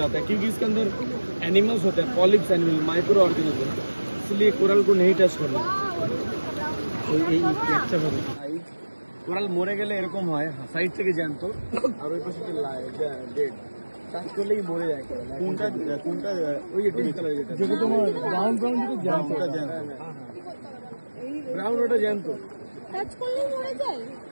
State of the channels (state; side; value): inverted; both; correlation -1.00